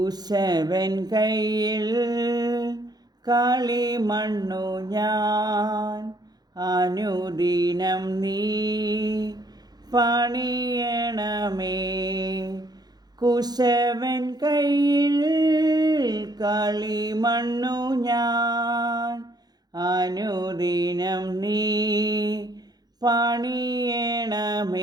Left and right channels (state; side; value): late; left; 0.19 ms